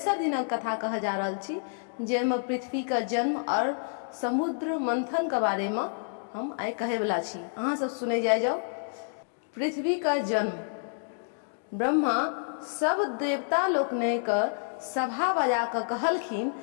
दिनक कथा कह जा रहल छी, जेमे पृथ्वी का जन्म और समुद्र मंथन के बारे में हम आइ कहे वाला छी। अहाँ सब सुने जाओ। पृथ्वी का जन्म ब्रह्मा सब देवता लोकने के सभा बजा के कहलखिन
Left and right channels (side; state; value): right; silent; digital silence